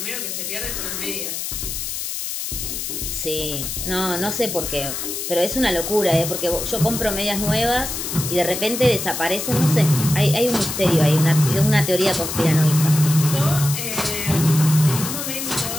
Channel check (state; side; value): noise; left; hiss, 5 dB below the sound